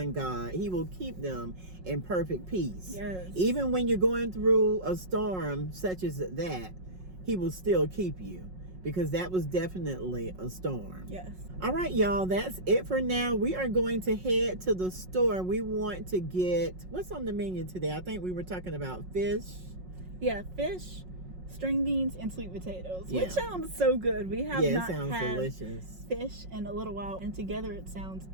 God, He will keep them in perfect peace. Even when you're going through a storm such as that, He will still keep you, because that was definitely a storm. All right, y'all, that's it for now. We are going to head to the store. We want to get, what's on the menu today? I think we were talking about fish. Fish, string beans, and sweet potatoes, which sounds so good. We have not had delicious fish in a little while, and together it sounds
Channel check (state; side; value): late; left; 5.4 ms